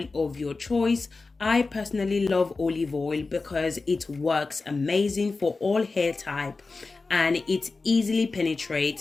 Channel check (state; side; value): quieter; right; 3.9 dB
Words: of your choice. I personally love olive oil because it works amazing for all hair type and it easily